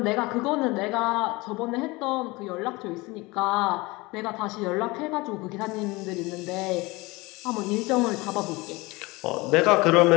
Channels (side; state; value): right; quieter; 23.1 dB